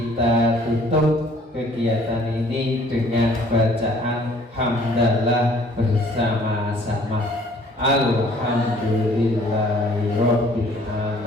tutup kegiatan ini dengan bacaan hamdalah bersama-sama. Alhamdulillahirabbil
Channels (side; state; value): both; normal; correlation 0.57